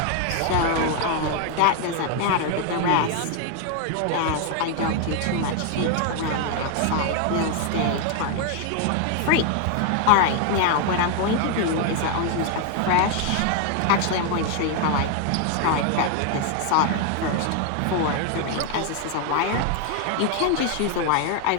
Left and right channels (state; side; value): different; both; correlation 0.01